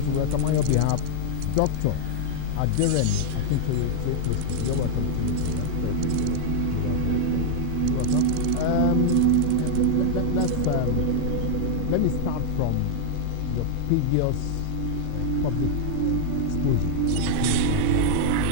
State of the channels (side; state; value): both; different; correlation -0.01